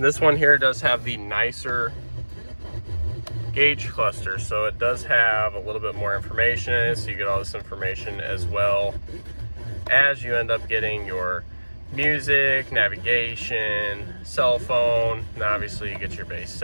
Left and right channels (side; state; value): both; inverted; correlation -1.00